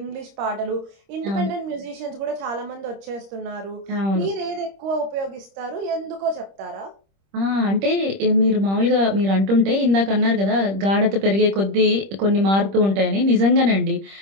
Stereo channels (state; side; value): late; left; 26 ms